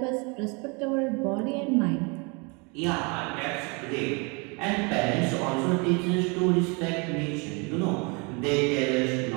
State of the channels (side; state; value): left; quieter; 30.9 dB